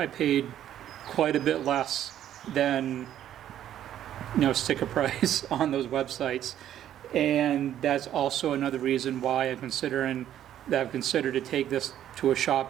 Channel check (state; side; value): quieter; left; 11.2 dB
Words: paid quite a bit less than sticker price on those websites. And that's also another reason why I've considered to take this to a